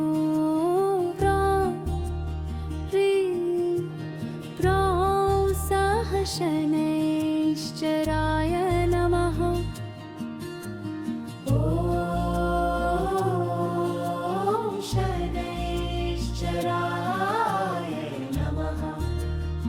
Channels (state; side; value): identical; both; correlation 1.00